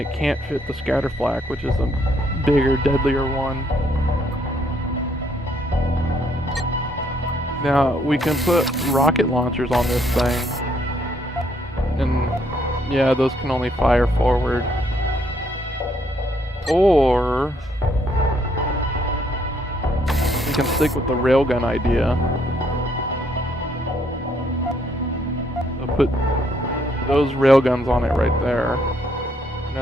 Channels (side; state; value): both; normal; correlation 0.70